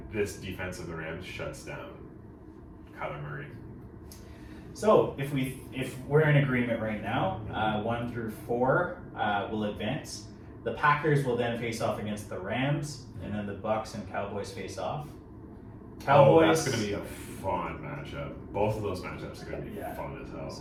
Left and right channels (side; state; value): both; identical; correlation 1.00